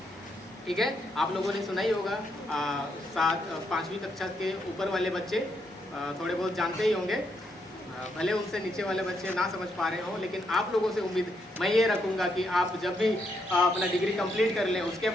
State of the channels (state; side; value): normal; both; correlation 0.78